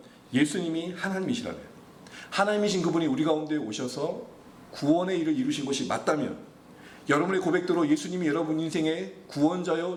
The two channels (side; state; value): both; identical; correlation 1.00